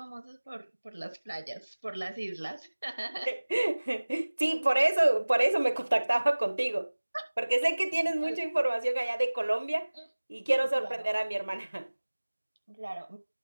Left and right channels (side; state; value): both; inverted; correlation -1.00